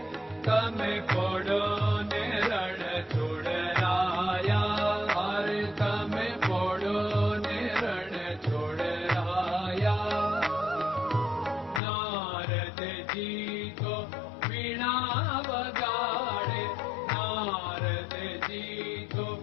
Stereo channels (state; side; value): drops out; right; at 11.8 s